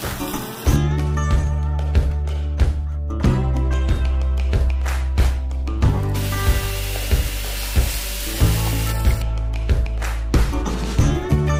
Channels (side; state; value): both; identical; correlation 1.00